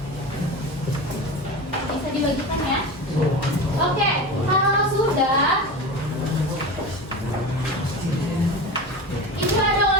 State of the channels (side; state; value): both; normal; correlation 0.27